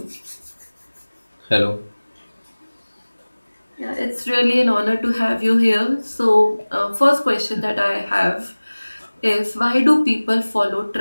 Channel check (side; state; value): both; inverted; correlation -1.00